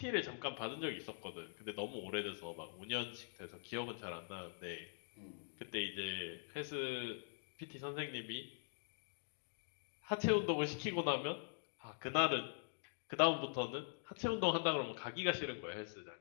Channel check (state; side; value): silent; right; digital silence